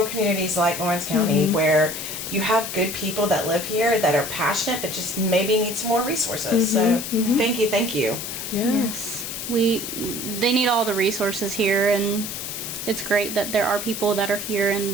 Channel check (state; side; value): noise; left; hiss, 6 dB below the sound